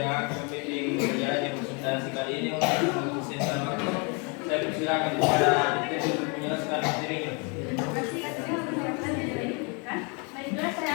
akan membimbing berjalannya presentasi kali ini untuk sesi waktu. Saya persilakan kepada Dikti untuk menjelaskan materinya. Baiklah, saya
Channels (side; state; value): right; quieter; 33.2 dB